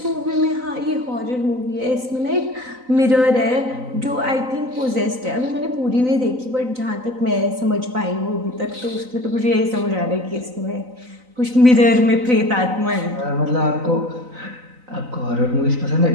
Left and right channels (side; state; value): left; late; 3.9 ms